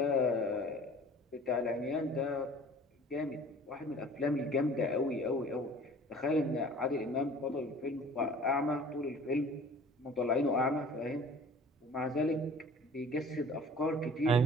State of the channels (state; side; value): normal; both; correlation 0.47